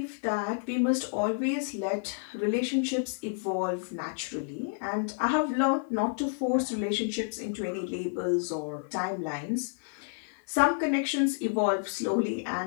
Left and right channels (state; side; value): silent; right; digital silence